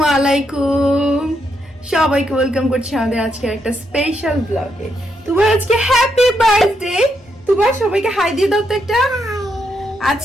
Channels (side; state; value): both; normal; correlation 0.79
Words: আলাইকুম, সবাইকে ওয়েলকাম করছি আমাদের আজকে একটা স্পেশাল ব্লগে। তোমার আজকে হ্যাপি বার্থডে। তোমার সবাইকে হাই দিয়ে দাও তো একটা।